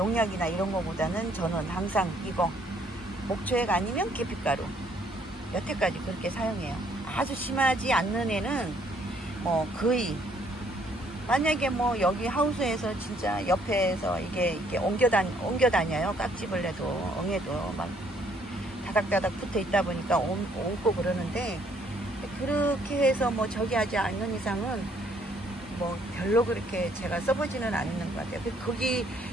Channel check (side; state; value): both; normal; correlation 0.66